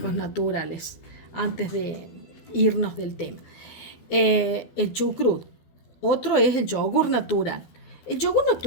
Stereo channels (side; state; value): right; late; 12 ms